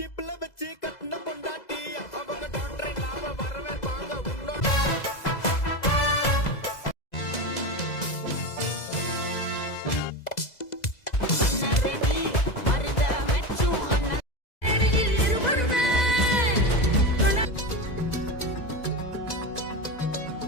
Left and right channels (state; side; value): late; right; 2.0 ms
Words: வச்சு கட்டின பொண்டாட்டி அவங்க டாக்டர் இல்லாம வரவே வாங்க உன்னோட